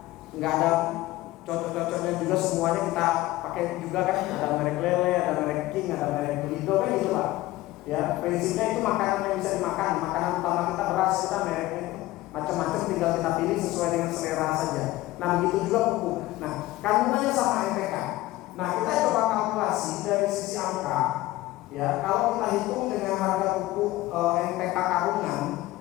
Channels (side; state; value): right; quieter; 17.4 dB